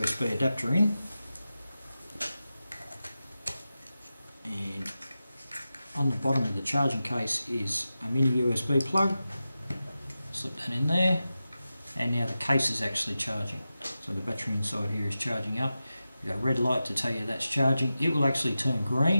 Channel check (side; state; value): both; inverted; correlation -0.93